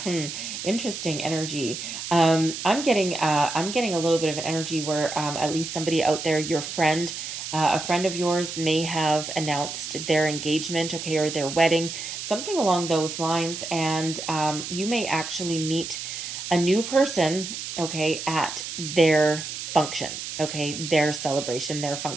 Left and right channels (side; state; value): right; noise; hiss, 7 dB below the sound